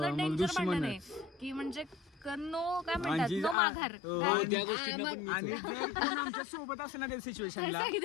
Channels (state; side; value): drops out; right; at 3.6 s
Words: मग डेंजर दुश्मन भांडण आहे. आहे की म्हणजे नो काय म्हणतात आणि नो माघार. त्या गोष्टींना पण आणि जर कोण आमच्या सोबत असेल ना त्या सिच्युएशनला,